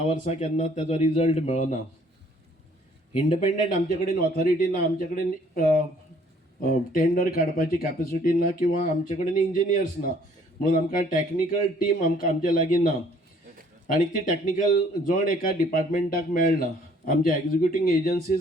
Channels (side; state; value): both; normal; correlation 0.60